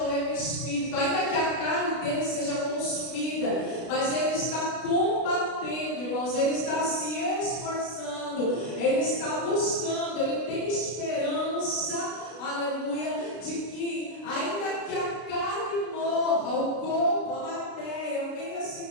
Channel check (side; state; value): right; late; 32 ms